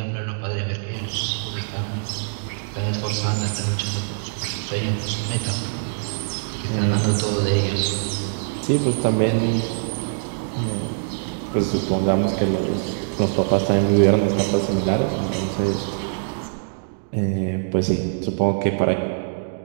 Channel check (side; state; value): left; silent; digital silence